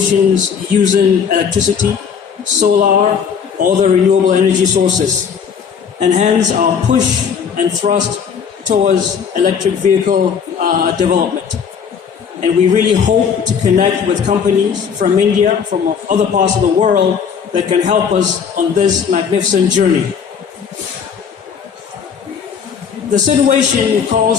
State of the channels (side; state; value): right; quieter; 7.0 dB